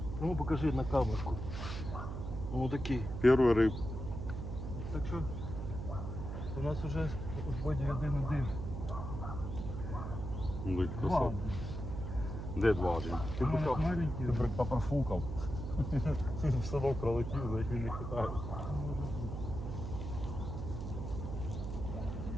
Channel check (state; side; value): noise; right; hum, 5 dB below the sound